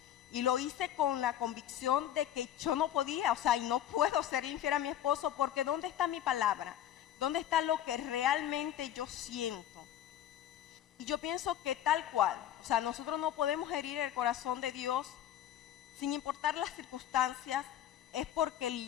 Y lo hice con la convicción de que yo no podía, o sea, y no puedo ser infiel a mi esposo, porque ¿dónde está mi palabra? ¿Dónde está lo que realmente yo siento? Y yo pienso que tal cual, o sea, nosotros no podemos herir el corazón de Dios sin importar las circunstancias, es porque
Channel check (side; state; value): right; quieter; 11.4 dB